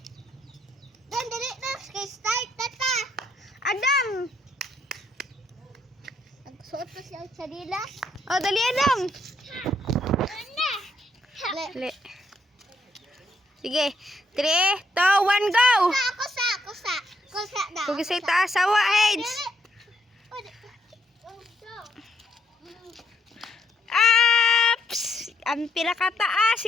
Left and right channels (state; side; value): normal; both; correlation 0.73